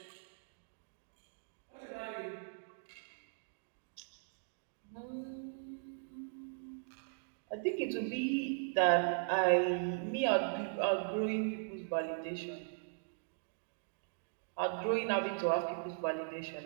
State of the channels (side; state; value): left; silent; digital silence